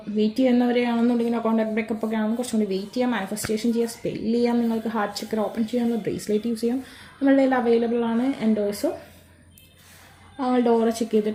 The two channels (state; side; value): identical; both; correlation 1.00